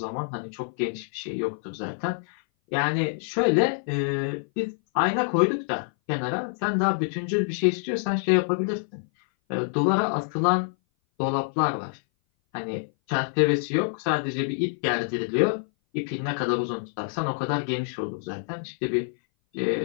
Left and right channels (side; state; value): right; silent; 58 dB below the other